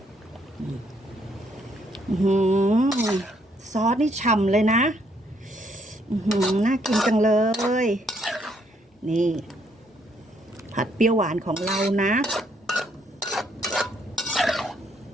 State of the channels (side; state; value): both; normal; correlation 0.70